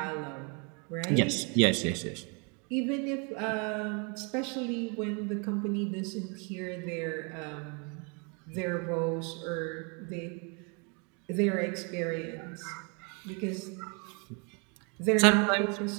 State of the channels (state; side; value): quieter; left; 34.5 dB